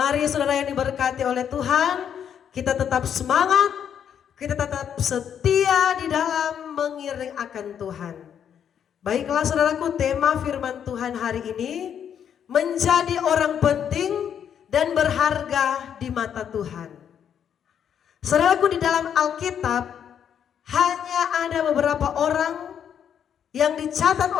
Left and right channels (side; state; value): right; quieter; 8.6 dB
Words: saudara yang diberkati oleh Tuhan, kita tetap semangat, kita tetap setia di dalam mengiring akan Tuhan. Baiklah saudaraku, tema firman Tuhan hari ini menjadi orang penting dan berharga di mata Tuhan. Saudaraku, di dalam Alkitab hanya ada beberapa orang yang dicatat